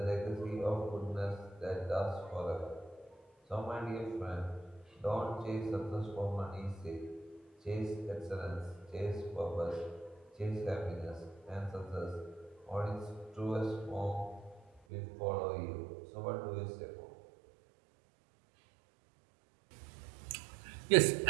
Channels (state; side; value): drops out; left; at 14.8 s